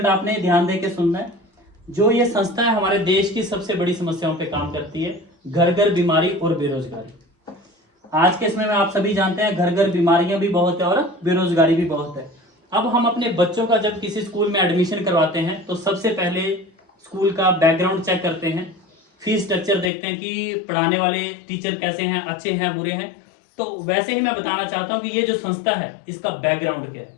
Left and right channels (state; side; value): drops out; right; at 19.9 s